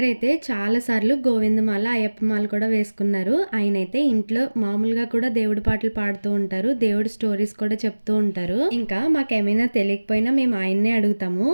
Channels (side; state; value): both; inverted; correlation -1.00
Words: అయితే చాలా సార్లు గోవిందమాల అయ్యప్పమాల కూడా వేసుకున్నారు. ఆయన అయితే ఇంట్లో మామూలుగా కూడా దేవుడి పాటలు పాడుతూ ఉంటారు, దేవుడి స్టోరీస్ కూడా చెప్తూ ఉంటారు. ఇంకా మాకేమైనా తెలియకపోయినా మేము ఆయన్నే అడుగుతాము.